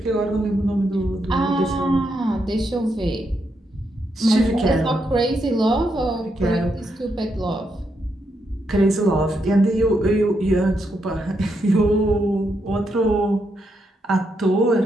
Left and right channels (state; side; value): normal; both; correlation 0.80